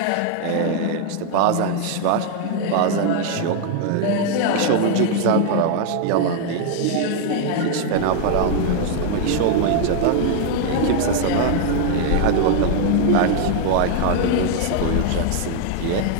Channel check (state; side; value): different; both; correlation 0.00